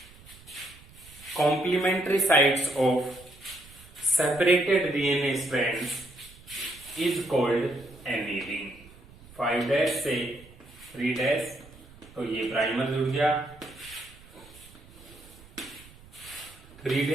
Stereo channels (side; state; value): right; noise; rumble, 22 dB below the sound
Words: complementary sides of separated DNA strands is called annealing। 5' से 3' तो ये प्राइमर जुड़ गया,